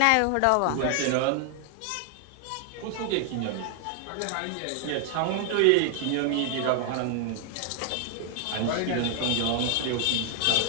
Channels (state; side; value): different; both; correlation 0.00